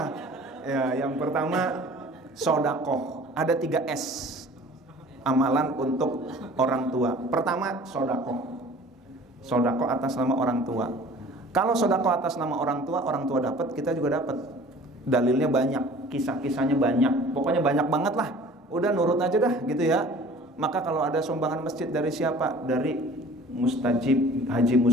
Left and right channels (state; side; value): normal; both; correlation 0.46